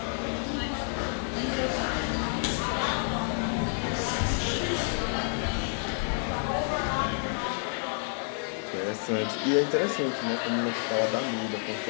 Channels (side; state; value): right; silent; 58 dB below the other